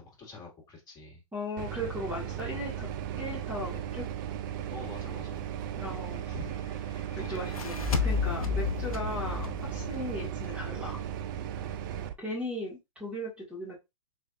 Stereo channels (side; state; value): both; normal; correlation 0.05